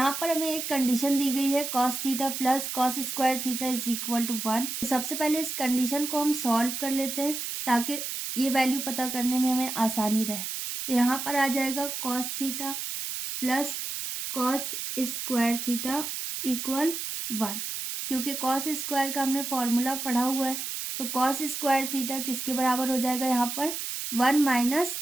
पर हमें एक कंडीशन दी गई है cos theta plus cos square theta is equal to 1। तो सबसे पहले इस कंडीशन को हम सॉल्व कर लेते हैं ताकि ये वैल्यू पता करने में हमें आसानी रहे। तो यहाँ पर आ जाएगा cos theta plus cos square theta equal 1, क्योंकि कॉस स्क्वायर का हमने फॉर्मूला पढ़ा हुआ है। तो कॉस स्क्वायर थीटा किसके बराबर हो जाएगा यहाँ पर 1 माइनस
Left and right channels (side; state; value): right; noise; hiss, 5 dB below the sound